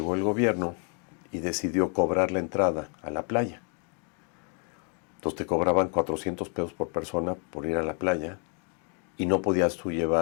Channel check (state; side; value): quieter; right; 39.2 dB